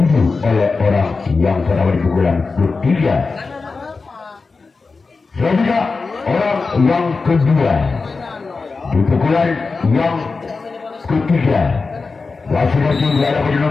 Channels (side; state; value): right; quieter; 4.2 dB